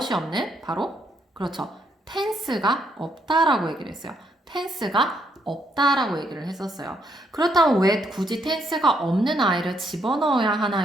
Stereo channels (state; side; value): normal; both; correlation 0.73